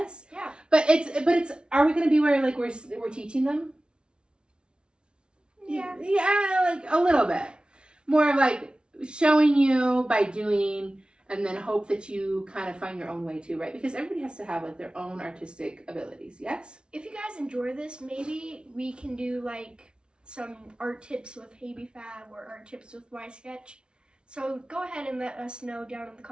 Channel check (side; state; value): left; late; 0.056 ms